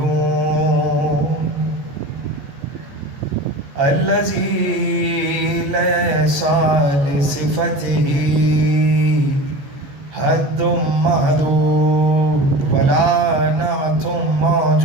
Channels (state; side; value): late; left; 15 ms